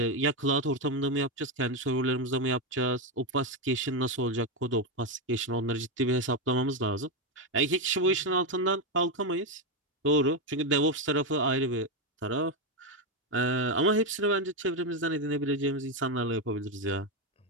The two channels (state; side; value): normal; both; correlation 0.08